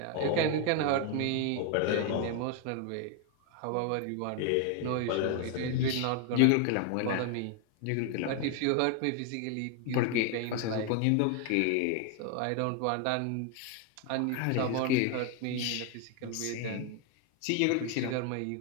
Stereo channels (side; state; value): both; different; correlation 0.01